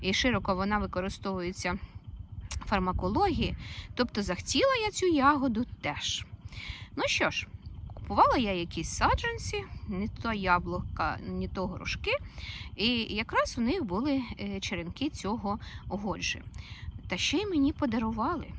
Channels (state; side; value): identical; both; correlation 1.00